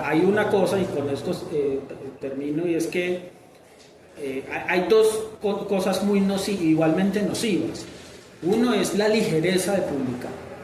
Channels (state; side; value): identical; both; correlation 1.00